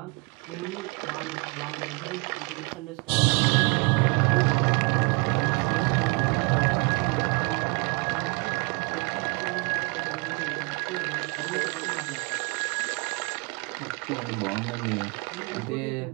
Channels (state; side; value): quieter; left; 29.9 dB